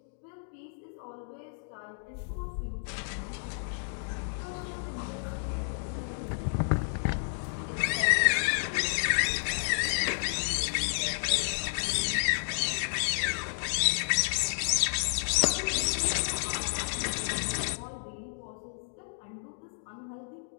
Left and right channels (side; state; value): right; silent; digital silence